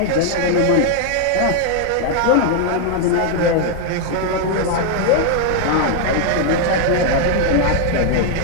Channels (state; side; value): different; both; correlation 0.00